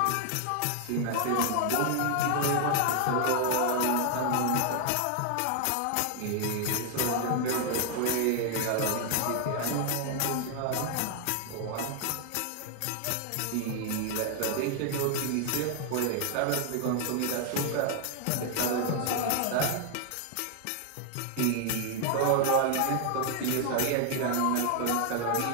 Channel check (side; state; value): both; different; correlation 0.00